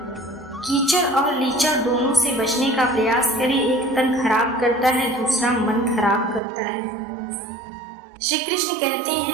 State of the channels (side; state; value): left; drops out; at 6.4 s